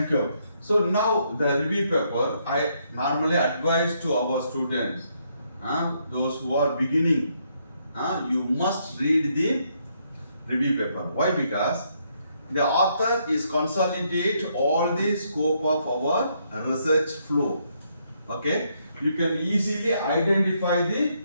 you. So now the review paper, I normally advise to our students, those who are beginning, you must read the review paper. Why? Because the author is consolidate all the scope of our research flow. Okay, you can easily identify the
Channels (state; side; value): inverted; both; correlation -0.74